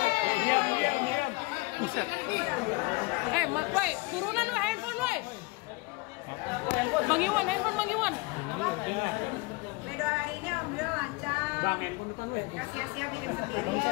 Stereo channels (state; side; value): quieter; right; 24.9 dB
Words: Woi, turunan woi, handphone woi. Bang Iwan, handphone Bang Iwan. Medo hari ini alhamdulillah lancar. Bang, handphone depan weh. Gak sia-sia bikin